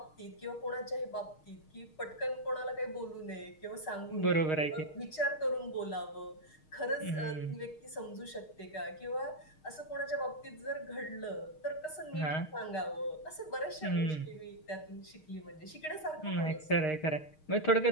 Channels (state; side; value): late; right; 6.4 ms